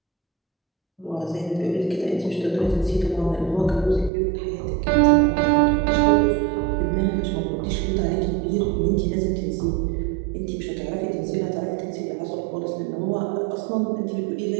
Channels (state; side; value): drops out; left; at 4.1 s